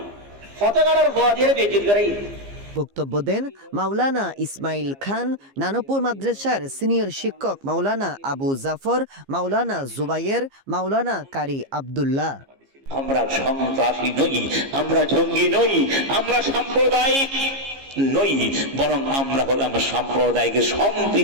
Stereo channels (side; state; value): left; late; 15 ms